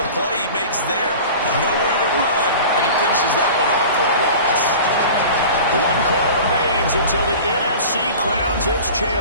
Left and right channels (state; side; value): inverted; both; correlation -0.38